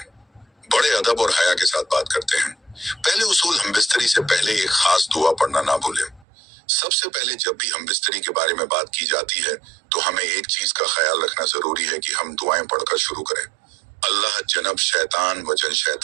बड़े अदब और हया के साथ बात करते हैं। पहले उसूल, हम बिस्तरी से पहले एक खास दुआ पढ़ना ना भूलें। सबसे पहले जब भी हम बिस्तरी के बारे में बात की जाती है तो हमें एक चीज का ख्याल रखना जरूरी है कि हम दुआएं पढ़कर शुरू करें। अल्लाह जनब शैतान वजन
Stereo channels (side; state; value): left; drops out; at 6.2 s